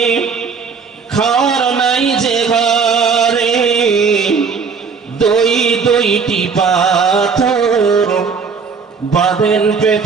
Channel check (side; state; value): left; quieter; 5.5 dB